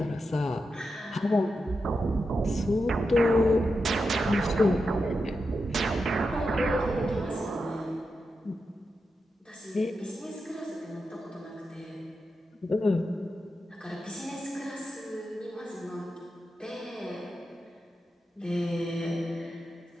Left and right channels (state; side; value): normal; both; correlation 0.88